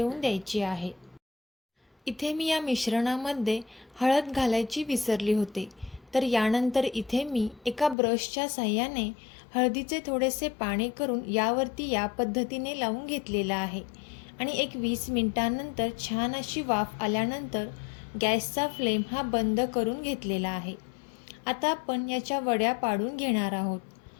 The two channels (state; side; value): drops out; right; at 8.0 s